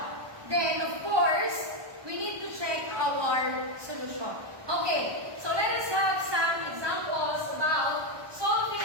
Then, of course, we need to check our solution. Okay, so let us have some examples about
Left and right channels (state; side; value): late; left; 1.2 ms